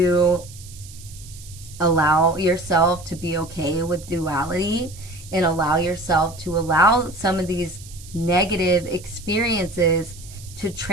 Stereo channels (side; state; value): right; noise; hiss, 19 dB below the sound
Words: allow yourself to be okay with duality and allow yourself to allow some of these negative experiences to